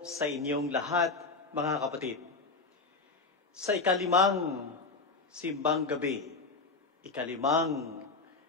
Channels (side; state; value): right; quieter; 4.0 dB